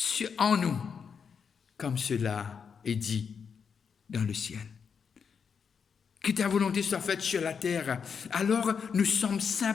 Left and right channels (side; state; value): right; quieter; 6.4 dB